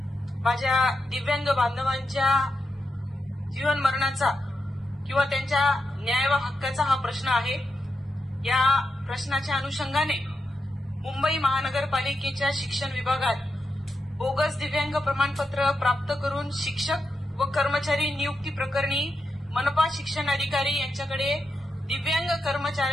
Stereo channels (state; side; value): normal; both; correlation 0.86